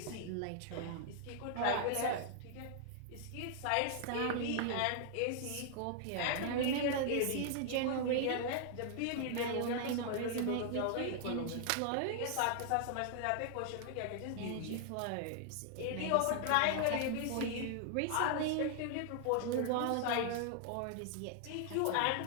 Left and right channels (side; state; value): both; different; correlation 0.00